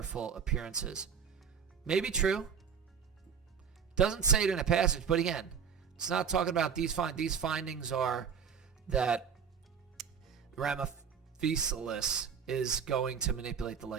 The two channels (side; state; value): left; quieter; 7.1 dB